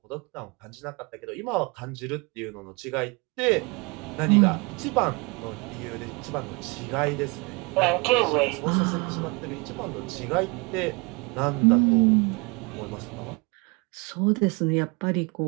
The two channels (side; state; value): left; quieter; 28.5 dB